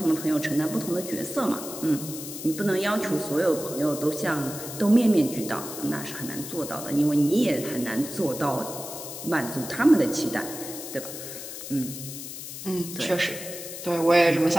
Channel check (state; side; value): noise; left; hiss, 9 dB below the sound